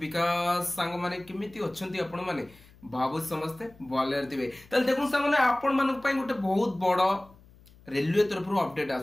सांग माने केमिति अछंती आपण माने बाबू समस्ते बॉलर दिबे तल देखु सांग माने आपण मानक पई गोटे बहुत बड़ रेलवे तरफ अपडेट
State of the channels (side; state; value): left; noise; hum, 25 dB below the sound